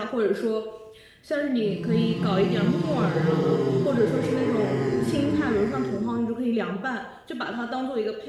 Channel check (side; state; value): both; identical; correlation 1.00